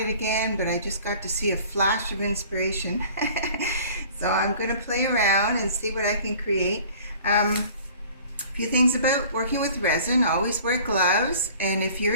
again, but I just got to see a flash of inspiration. So I'm going to play around and see what I can create. A few things about working with resin: always wear gloves, and if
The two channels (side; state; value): both; inverted; correlation -0.48